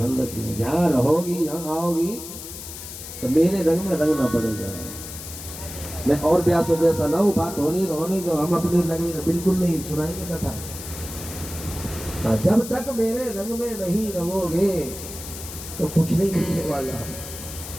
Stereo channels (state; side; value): noise; left; hiss, 11 dB below the sound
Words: रखिए। जहाँ रहोगी, जहाँ आओगी तो मेरे रंग में रंगना पड़ेगा। मैं और ब्यास जैसा ना हूँ, बात होने दो, हम अपने लगे बिल्कुल नहीं सुनाएंगे कथा। जब तक मेरे रंग में नहीं रहोगे तो कुछ नहीं मिलने वाला।